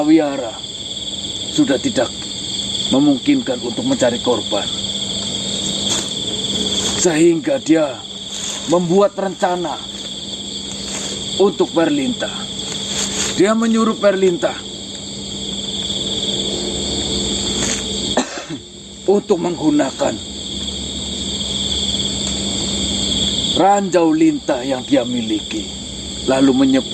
sudah tidak memungkinkan untuk mencari korban. Sehingga dia membuat rencana untuk Berlinta. Dia menyuruh Berlinta untuk menggunakan ranjau lintah yang dia miliki, lalu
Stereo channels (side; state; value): both; identical; correlation 1.00